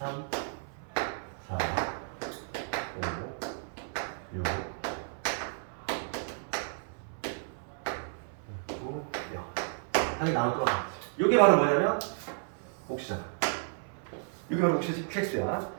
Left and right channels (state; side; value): silent; left; 56 dB below the other